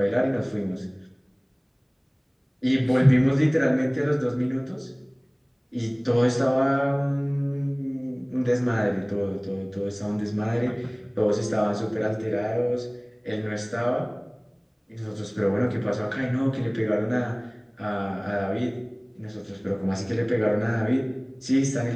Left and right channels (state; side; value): identical; both; correlation 1.00